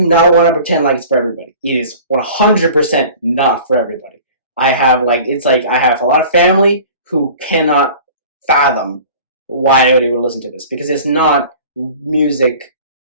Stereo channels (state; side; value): inverted; both; correlation -0.43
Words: not want to pretend like it's for everybody. It is 100% not for everybody. I have a lot of family who cannot fathom why I would listen to this, because it's not music